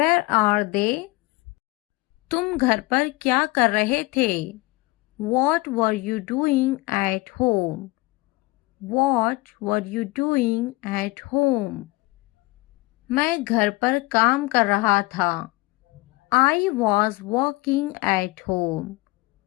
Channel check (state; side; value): quieter; right; 22.1 dB